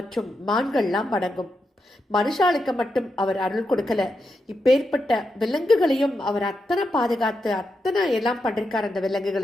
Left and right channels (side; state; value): both; normal; correlation 0.85